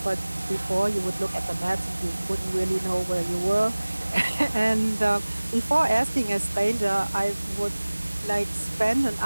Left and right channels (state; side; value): inverted; both; correlation -1.00